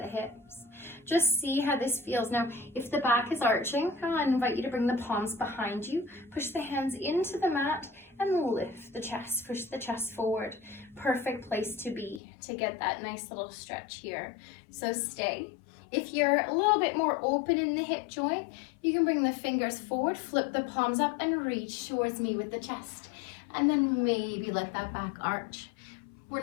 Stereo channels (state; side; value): drops out; right; at 12.2 s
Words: hips. Just see how this feels. Now, if the back is arching, I invite you to bring the palms behind you. Push the hands into the mat and lift the chest. Push the chest forward. Perfect place to be to get that nice little stretch here. So stay. If you're a little bit more open in the hip joint, you can bring the fingers forward, flip the palms up, and reach towards me with the chest. And then maybe let that back arch. We're